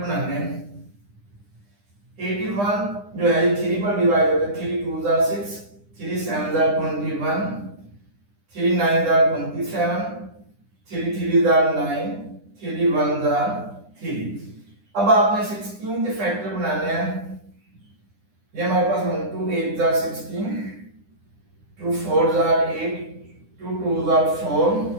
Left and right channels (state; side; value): late; left; 9.9 ms